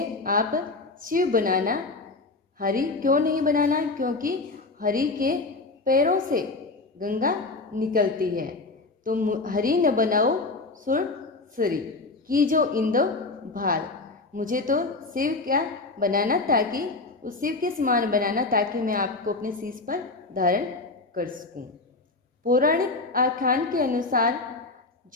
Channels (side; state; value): right; quieter; 3.5 dB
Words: आप शिव बनाना, हरि क्यों नहीं बनाना, क्योंकि हरि के पैरों से गंगा निकलती है। तो हरि न बनाओ सुरसुरी, कि जो इंदो भाल, मुझे तो शिव क्या बनाना, ताकि उस शिव के समान बनाना, ताकि मैं आपको अपने शीश पर धारण कर सकूं। पौराणिक आख्यान के अनुसार